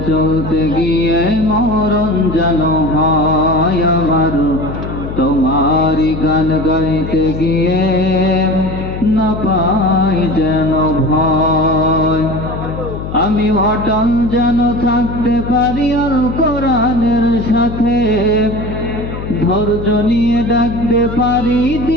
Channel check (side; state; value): left; noise; hum, 7 dB below the sound